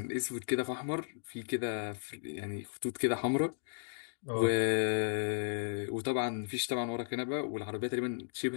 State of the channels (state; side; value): silent; right; digital silence